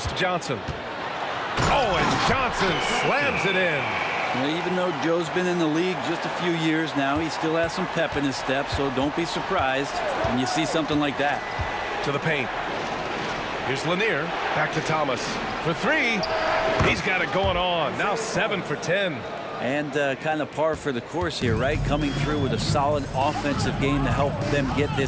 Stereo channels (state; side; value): identical; both; correlation 1.00